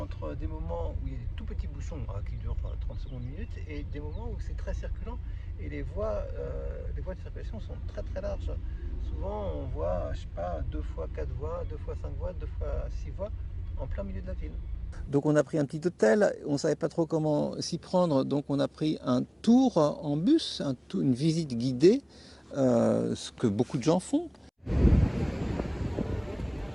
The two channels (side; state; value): both; identical; correlation 1.00